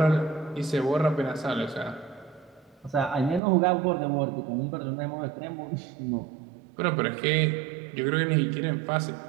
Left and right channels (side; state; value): left; drops out; at 3.4 s